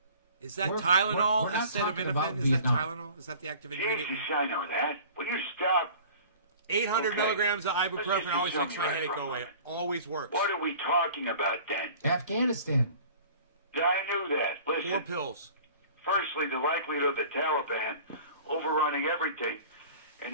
Is that we're Tylenol? not talking about Acetaminophen? Is that Vietnam. Tylenol? Is that the active ingredient? Jesus, I know that. Will you stop? 800 Okay. milligrams of Let's ibuprofen just always assume makes my you're right headache for a go away. moment. Always works. What are we talking about then? Afghanistan. I knew that. Listen. 4 pills. Firstly, the likelihood of the Taliban overrunning everything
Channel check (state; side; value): inverted; both; correlation -0.45